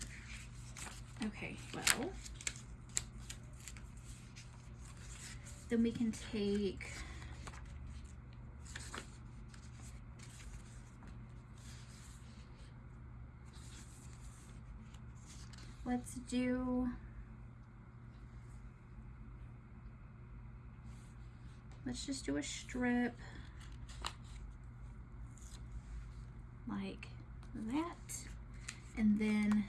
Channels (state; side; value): identical; both; correlation 1.00